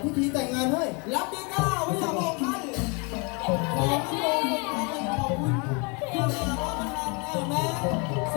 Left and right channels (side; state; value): right; quieter; 32.1 dB